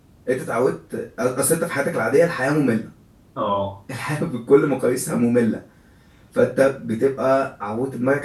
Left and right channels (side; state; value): both; identical; correlation 1.00